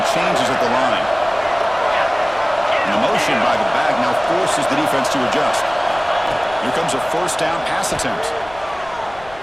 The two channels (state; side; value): noise; left; rumble, 22 dB below the sound